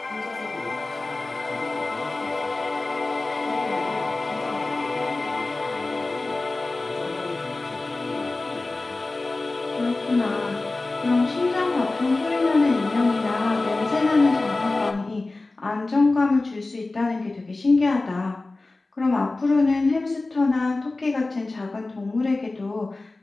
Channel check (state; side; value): quieter; right; 3.2 dB